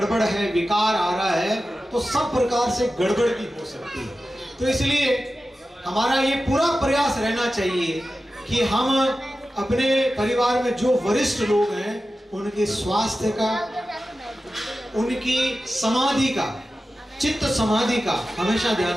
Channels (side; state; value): both; normal; correlation 0.93